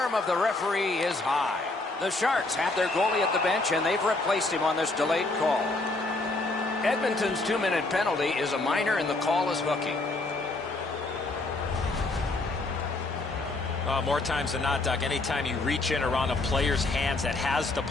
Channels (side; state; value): right; quieter; 3.1 dB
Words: of the referee is high. The Sharks have their goalie at the bench, and they've replaced him on this delayed call. Edmonton's 2-minute penalty is a minor, and the call is hooking. More times than not, Doc, anytime you reach in around a player's hands that has the